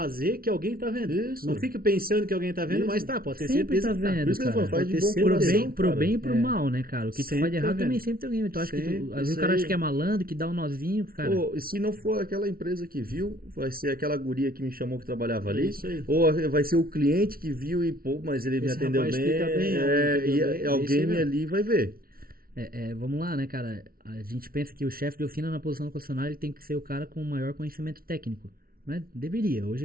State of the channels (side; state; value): left; late; 0.43 ms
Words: que alguém tá vendo. Isso. Não fique pensando que alguém tá vendo, Isso. mas tá, pode ter Sempre certeza tá que tá. vendo, Por isso que eu cara. falo, faz Pode de ter bom certeza. coração, Pro cara. bem e pro É. mal, né, cara? O que tu Sempre faz de tá errado vendo. também sempre tem alguém. Tu acha que Sempre, às vezes isso o cara aí. acha que é malandro, que dá um nozinho, cara. Pô, e se não for aquela empresa que viu, vai ser aquela guria que me chamou que trabalhava ali. Isso aí. Ou vai ser o cliente que viu e, pô, mas ele me Esse atendeu rapaz bem. explica bem, entendeu E bem, é isso alguém aí mesmo. ali vai ver. Vamos lá, né, cara? A gente pensa que o chefe de oficina na posição do concessionário ele tem que ser o cara com o maior conhecimento técnico. Mas deveria.